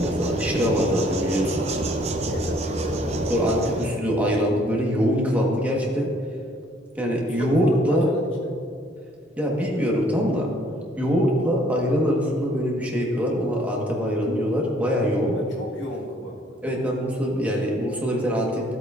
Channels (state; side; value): normal; both; correlation 0.62